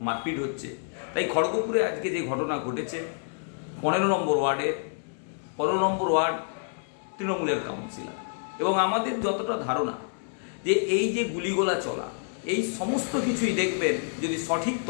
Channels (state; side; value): silent; right; 59 dB below the other